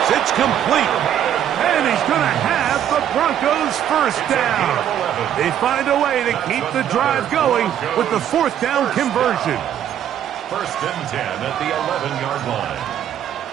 It's complete. And he's going to have the Broncos' first down. They find a way to keep the drive going with the 4th down conversion. 1st and 10 at the 11-yard line.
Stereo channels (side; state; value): left; quieter; 10.2 dB